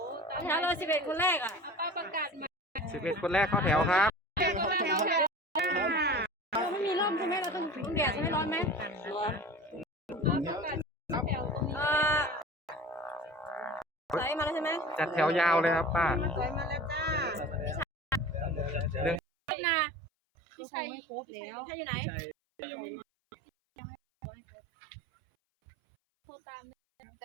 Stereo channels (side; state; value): left; drops out; at 19.2 s